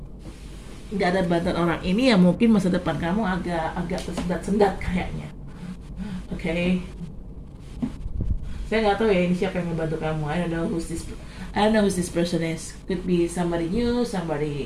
nggak ada bantuan orang ini, ya mungkin masa depan kamu agak tersendat-sendat kayaknya. Oke. Saya nggak tahu ya ini siapa yang membantu kamu. I don't know who this person is. Could be somebody new,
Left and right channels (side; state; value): both; identical; correlation 1.00